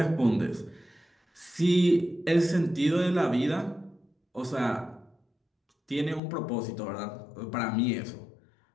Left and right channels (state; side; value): drops out; right; at 6.2 s